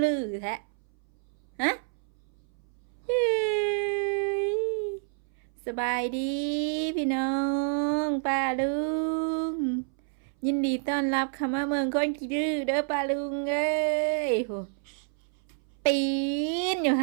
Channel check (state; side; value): silent; left; 59 dB below the other